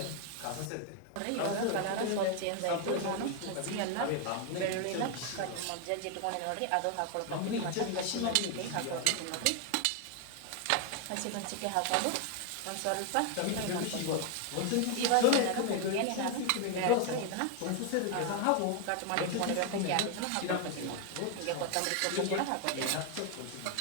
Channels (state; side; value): different; both; correlation 0.01